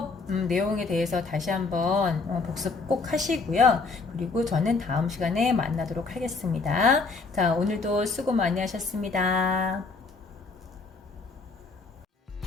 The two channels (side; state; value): right; quieter; 4.1 dB